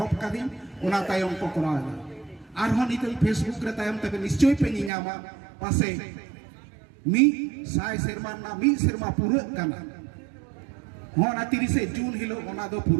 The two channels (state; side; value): drops out; left; at 4.9 s